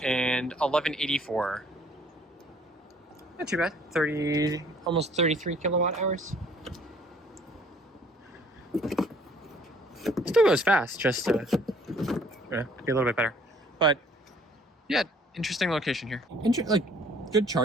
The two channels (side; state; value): both; normal; correlation 0.58